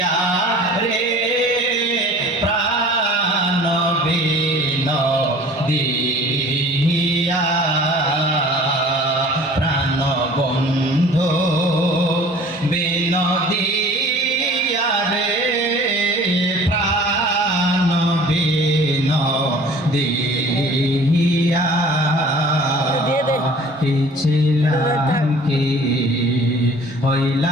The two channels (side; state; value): both; normal; correlation 0.47